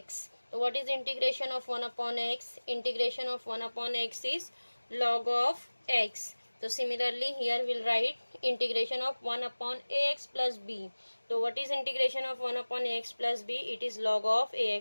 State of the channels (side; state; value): both; inverted; correlation -1.00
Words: So what is integration of 1 upon x? Integration of 1 upon x is log of x. So similarly here we'll write integration of 1 upon ax plus b. So what is integration of 1 upon ax plus b? It is log of